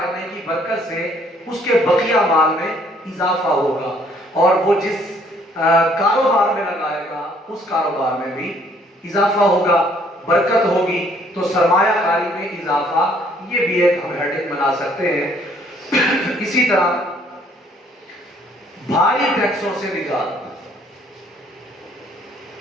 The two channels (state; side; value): normal; both; correlation 0.63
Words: کی برکت سے اس کے بقیہ مال میں اضافہ ہوگا، اور وہ جس کاروبار میں لگائے گا اس کاروبار میں بھی اضافہ ہوگا، برکت ہوگی۔ تو سرمایہ کاری میں اضافہ یہ بھی ایک ہم ہیڈنگ بنا سکتے ہیں۔ اسی طرح بھاری ٹیکسوں سے نجات،